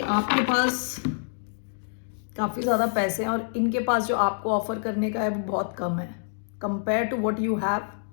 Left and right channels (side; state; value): right; silent; digital silence